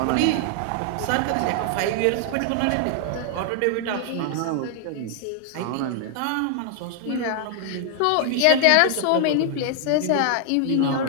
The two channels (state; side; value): different; both; correlation 0.00